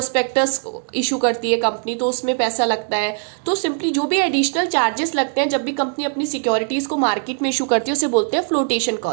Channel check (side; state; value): left; silent; 56 dB below the other